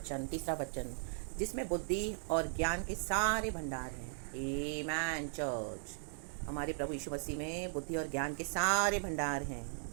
3रा वचन, जिसमें बुद्धि और ज्ञान के सारे भंडार हैं। आमेन चर्च। हमारे प्रभु यीशु मसीह में बुद्धि और ज्ञान के सारे भंडार हैं।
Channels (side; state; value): left; silent; digital silence